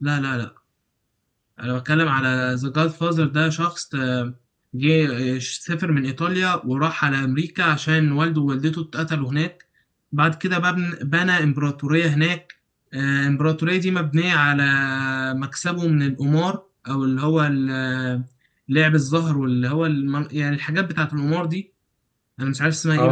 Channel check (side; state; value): both; identical; correlation 1.00